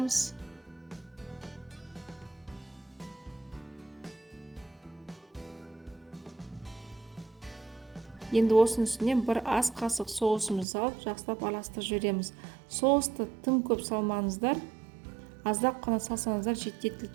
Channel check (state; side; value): drops out; left; at 10.7 s